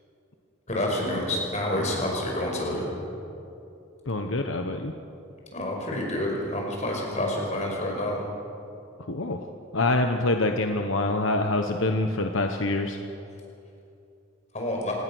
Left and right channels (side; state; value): both; normal; correlation 0.16